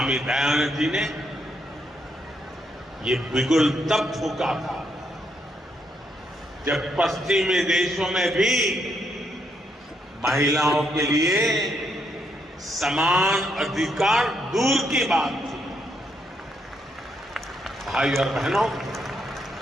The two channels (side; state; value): both; normal; correlation 0.76